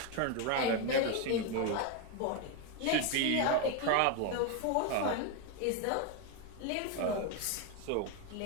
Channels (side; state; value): both; different; correlation 0.02